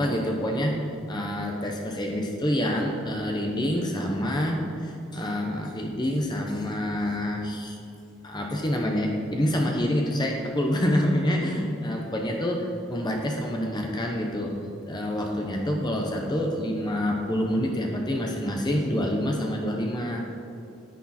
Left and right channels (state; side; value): normal; both; correlation 0.76